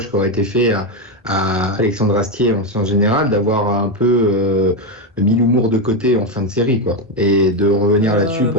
qui aurait été fait à Alexandre Astier en général d'avoir un peu mis l'humour de côté en fin de série, quoi, et de revenir là-dessus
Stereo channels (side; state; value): both; normal; correlation 0.09